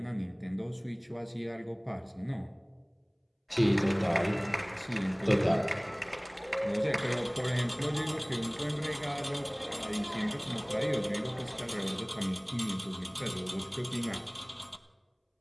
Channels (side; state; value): both; identical; correlation 1.00